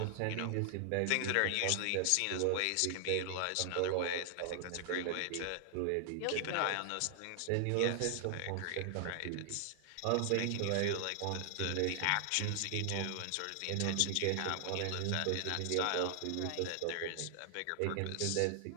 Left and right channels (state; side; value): different; both; correlation 0.00